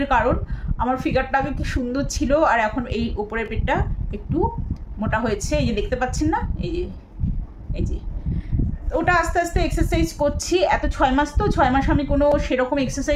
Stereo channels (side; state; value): both; identical; correlation 1.00